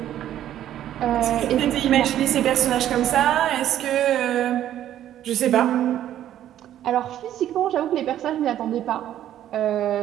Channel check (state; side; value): quieter; left; 11.7 dB